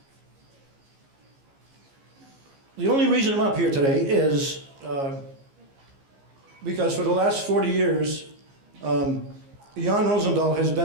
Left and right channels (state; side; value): late; left; 15 ms